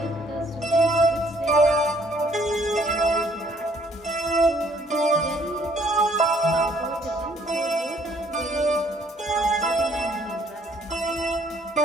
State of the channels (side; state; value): both; normal; correlation 0.63